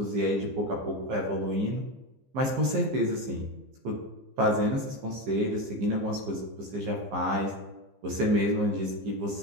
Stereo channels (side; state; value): left; late; 15 ms